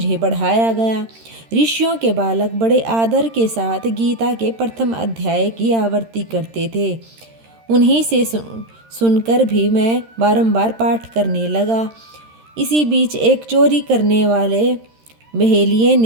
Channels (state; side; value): late; left; 13 ms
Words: पढ़ाया गया। ऋषियों के बालक बड़े आदर के साथ गीता के प्रथम अध्याय की आवृत्ति करते थे। उन्हीं से सुनकर भी मैं बारंबार पाठ करने लगा। इसी बीच एक चोरी करने वाले बहेलिये